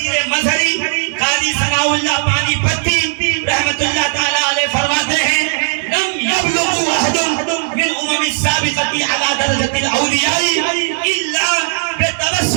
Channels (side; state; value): left; silent; 69 dB below the other